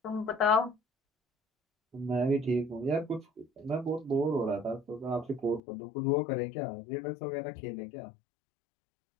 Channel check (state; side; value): drops out; right; at 5.6 s